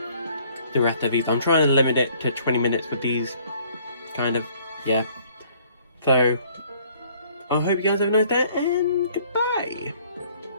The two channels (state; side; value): inverted; both; correlation -0.60